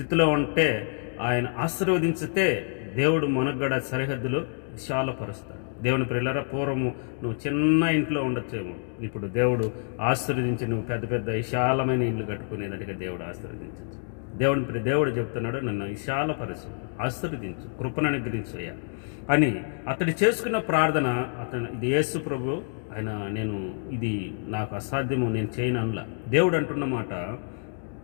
ఉంటే ఆయన ఆశీర్వదించితే దేవుడు మనకు కూడా సరిహద్దులు విశాలపరుస్తాడు. దేవుని ప్రియులారా, పూర్వము నువ్వు చిన్న ఇంట్లో ఉండొచ్చేమో, ఇప్పుడు దేవుడు ఆశీర్వదించి నువ్వు పెద్ద పెద్ద విశాలమైన ఇల్లు కట్టుకునేదానికి దేవుడు ఆశీర్వదించచ్చు. దేవుడు చెప్తున్నాడు, నన్ను విశాలపరచు, ఆశీర్వదించు, కృపను అనుగ్రహించయ్యా అని అతడు చేసుకున్న ప్రార్థన. ఇది యేసు ప్రభు ఆయన, నేను ఇది నాకు అసాధ్యము, నేను చేయను అనలా. దేవుడు అంటున్న మాట,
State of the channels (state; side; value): silent; right; 60 dB below the other